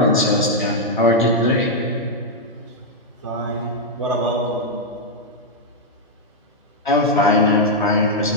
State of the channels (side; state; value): both; normal; correlation -0.03